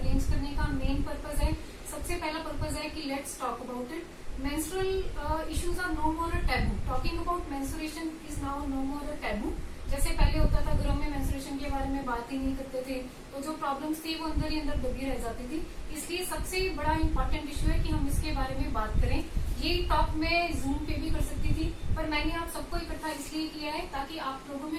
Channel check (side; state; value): both; identical; correlation 1.00